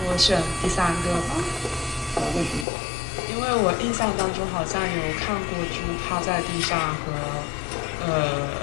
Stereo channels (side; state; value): right; drops out; at 2.7 s